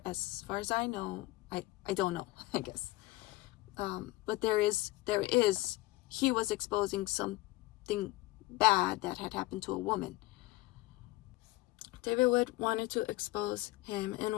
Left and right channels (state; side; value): quieter; right; 19.2 dB